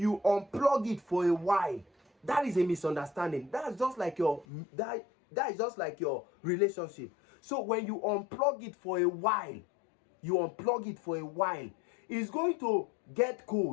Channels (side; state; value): right; drops out; at 4.5 s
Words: unplug it for a while, that is a misunderstanding. That is just like your relationship. So when you unplug it for a while, it's going to get